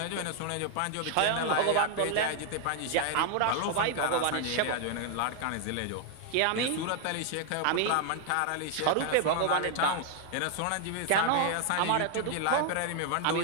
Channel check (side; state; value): both; different; correlation 0.00